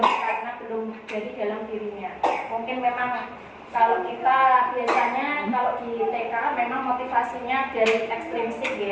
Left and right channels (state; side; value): identical; both; correlation 1.00